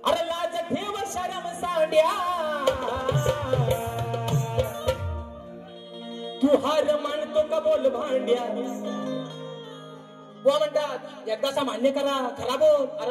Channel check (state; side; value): identical; both; correlation 1.00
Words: अरे लाज ठेव शरम साड्या, तू हार मानतो का बोल भांड्या. बुवा म्हणतात एकदाचा मान्य करा, खरा बोल.